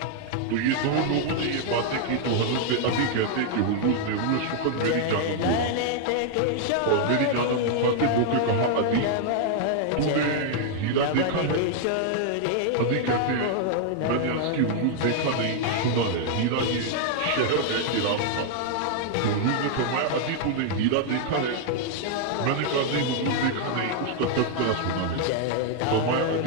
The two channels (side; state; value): both; different; correlation 0.00